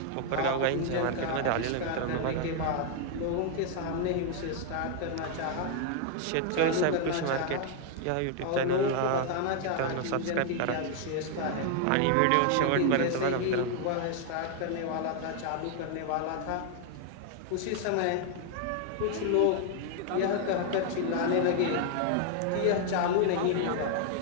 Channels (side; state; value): both; different; correlation 0.00